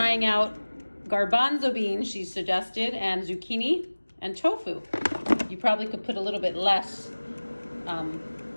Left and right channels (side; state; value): both; inverted; correlation -1.00